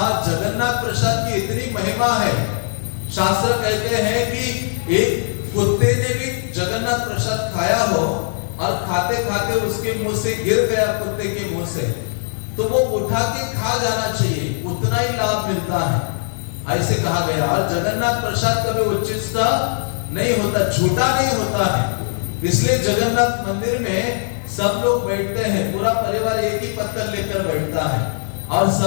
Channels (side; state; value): right; silent; digital silence